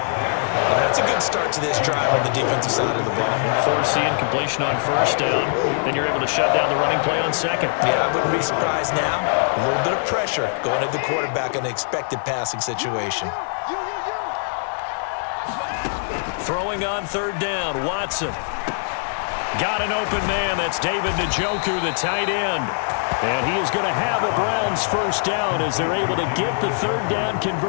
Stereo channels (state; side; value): silent; right; 64 dB below the other